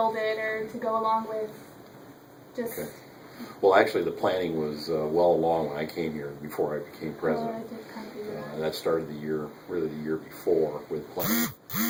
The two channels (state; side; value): identical; both; correlation 1.00